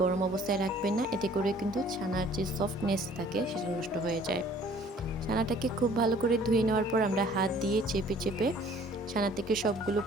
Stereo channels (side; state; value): both; normal; correlation 0.54